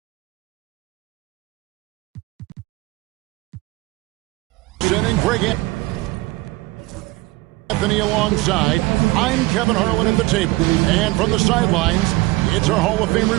Bring in Anthony alongside. I'm Kevin Harlan at the table. And from the sidelines, it's our Hall of Fame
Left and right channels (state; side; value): quieter; left; 21.0 dB